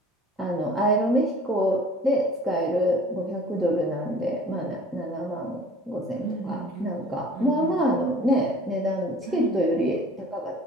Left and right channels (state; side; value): normal; both; correlation 0.48